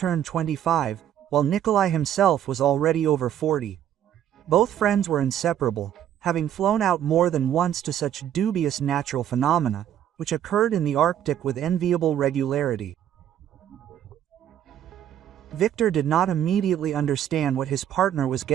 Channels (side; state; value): left; quieter; 10.5 dB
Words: 25, while Nikolai himself was already over 40. Both friends were inseparable, having flown out more than once to such dubious natural phenomena, which occurred in the Arctic with enviable regularity. Victor did not immediately understand what his partner was